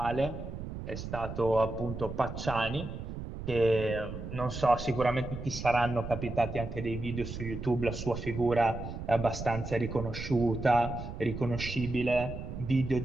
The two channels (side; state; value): right; noise; rumble, 8 dB below the sound